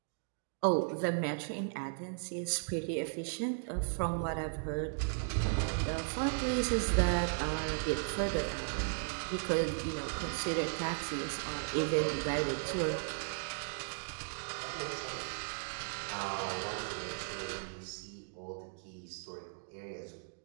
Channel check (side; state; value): left; silent; digital silence